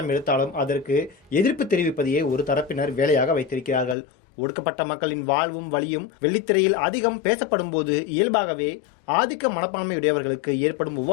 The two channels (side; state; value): right; drops out; at 4.0 s